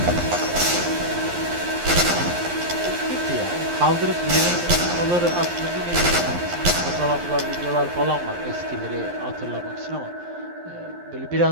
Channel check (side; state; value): left; late; 11 ms